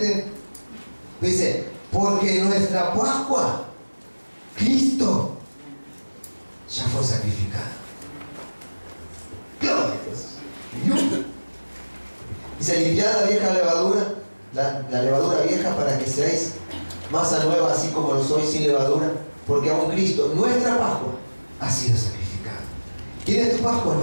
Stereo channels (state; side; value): inverted; both; correlation -1.00